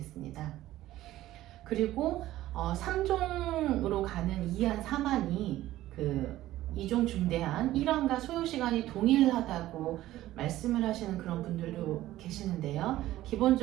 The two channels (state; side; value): quieter; left; 15.0 dB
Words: 그리고 3종으로 가는 2안 3안이 그 2종 중대안 1안과 소요 시간이 동일하다고 말씀을 하시는 그런 분들도 계시는데요.